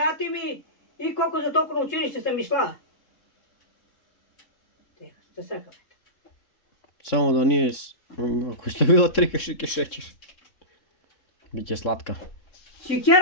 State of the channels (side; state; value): right; late; 3.7 ms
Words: ми и колко за толкова на училище съм išla. Šta sakam? Samo da nije... Ako je stavila 3 kašike šećer. Biće slatka.